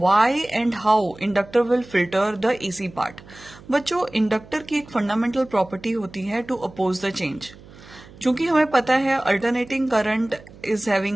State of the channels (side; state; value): right; noise; hum, 21 dB below the sound